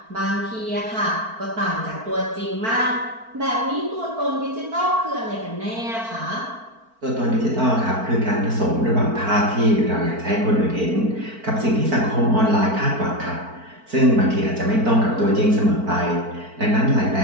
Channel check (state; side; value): late; left; 4.5 ms